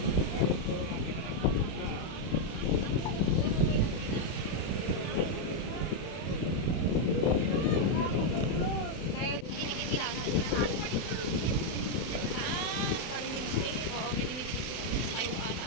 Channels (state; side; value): late; right; 31 ms